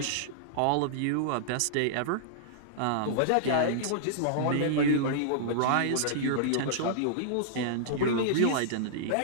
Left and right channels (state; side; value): different; both; correlation -0.02